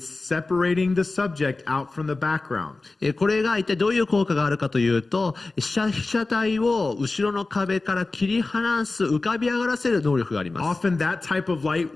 separating the subject out from the background. これが一体どういう効果があるかというと、被写体を後ろの壁から切り離す、浮かび上がらせる能力があります。Often that type of light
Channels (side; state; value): right; quieter; 3.4 dB